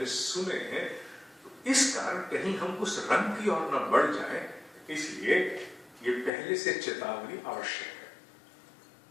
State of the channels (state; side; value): drops out; right; at 6.3 s